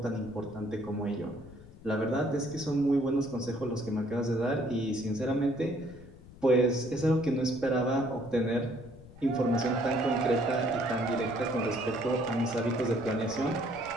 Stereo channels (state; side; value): noise; left; rumble, 19 dB below the sound